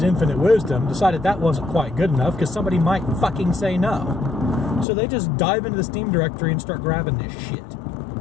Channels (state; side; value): drops out; right; at 4.9 s